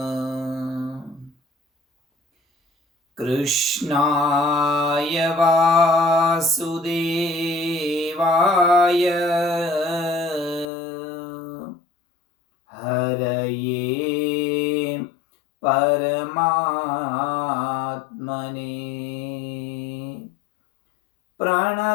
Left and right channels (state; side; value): drops out; right; at 10.7 s